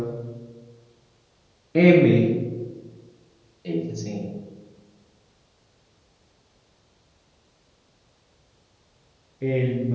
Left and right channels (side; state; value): both; identical; correlation 1.00